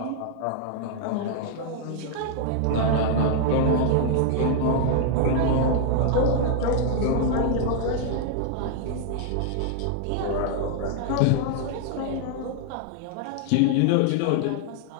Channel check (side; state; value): both; different; correlation 0.00